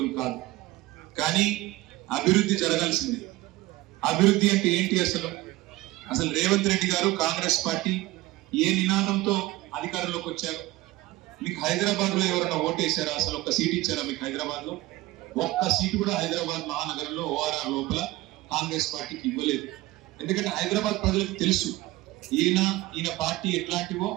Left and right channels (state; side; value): quieter; left; 18.5 dB